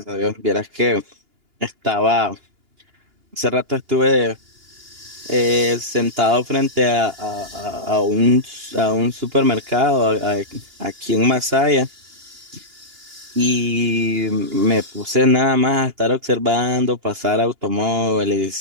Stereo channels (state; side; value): late; left; 2.8 ms